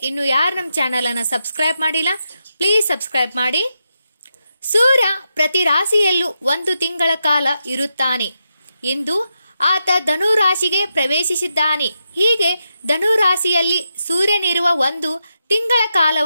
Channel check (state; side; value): inverted; both; correlation -0.86